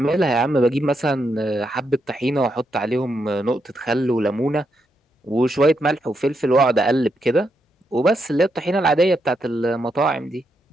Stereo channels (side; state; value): both; normal; correlation 0.81